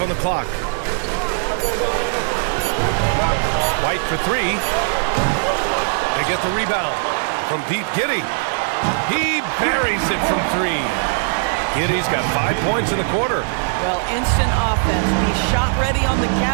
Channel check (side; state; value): left; silent; 66 dB below the other